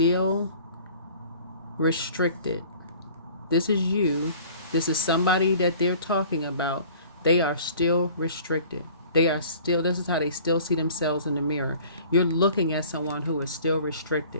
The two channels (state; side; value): inverted; both; correlation -0.48